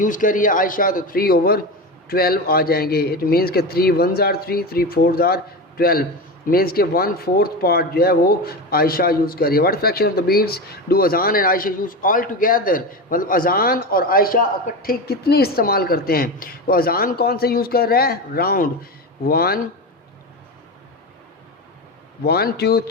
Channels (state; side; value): normal; both; correlation 0.21